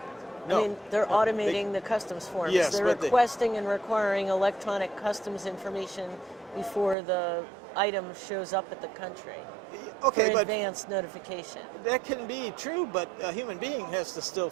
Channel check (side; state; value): left; drops out; at 7.0 s